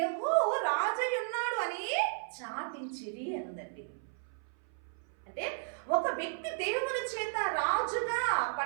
రాజయ్యున్నాడు అని చాటించిరి అనుందండి. అంటే ఒక వ్యక్తి దేవుని చేత రాజుగా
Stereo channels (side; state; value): left; silent; 55 dB below the other